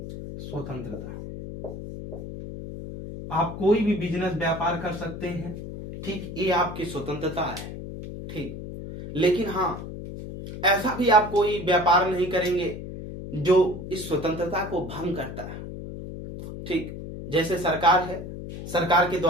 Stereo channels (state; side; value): noise; left; hum, 9 dB below the sound